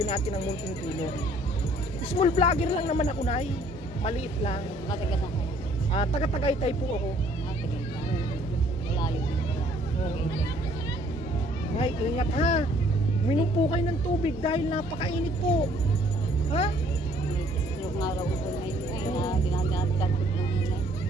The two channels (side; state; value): both; normal; correlation 0.60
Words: natin ng munting tulong. Small vlogger lang naman ako, Nay. Maliit lang. Matagas ako. Taga-Tagaytay po ako. Matagas lang. Malayo din pala. Ay, ingat ha. Minom po kayo ng tubig dahil napakainit po. Ha? May stroke nga raw ko ngayon ay na dinadagdag ko ng hinay.